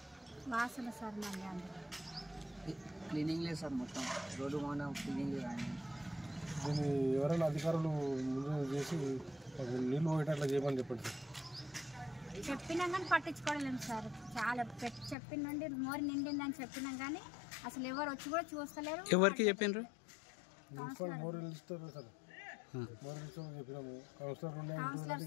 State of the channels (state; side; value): drops out; right; at 15.2 s